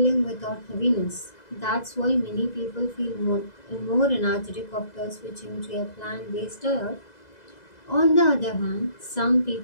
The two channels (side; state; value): right; late; 2.0 ms